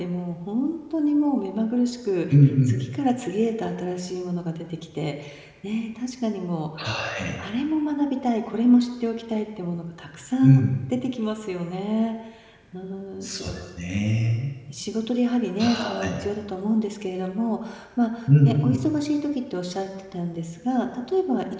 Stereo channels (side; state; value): both; identical; correlation 1.00